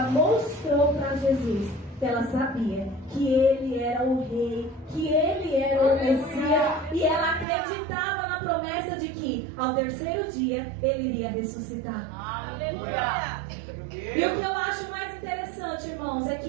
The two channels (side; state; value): left; drops out; at 7.5 s